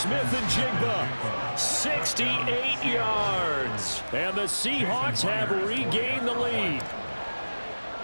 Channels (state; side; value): inverted; both; correlation -1.00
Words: and Jigba, 68 yards. And the Seahawks have regained the lead.